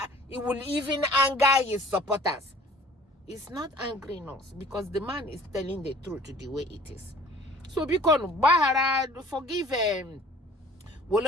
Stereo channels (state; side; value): normal; both; correlation 0.50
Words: his supporters. It's not angering us because the man is telling the truth the way it is. So because Bahara, forgive Wole